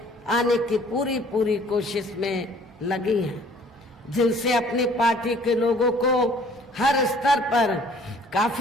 आने की पूरी कोशिश में लगी हैं, जिनसे अपनी पार्टी के लोगों को हर स्तर पर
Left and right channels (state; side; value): normal; both; correlation 0.55